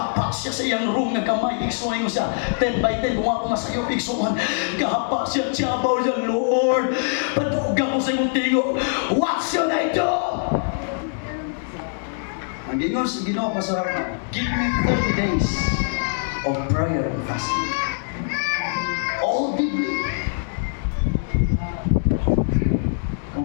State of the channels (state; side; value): silent; right; digital silence